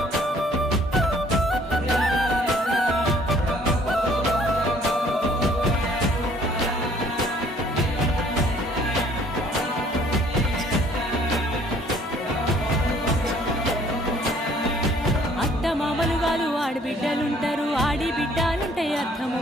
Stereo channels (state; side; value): normal; both; correlation 0.59